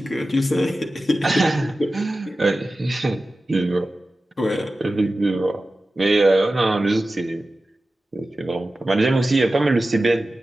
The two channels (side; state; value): both; normal; correlation 0.95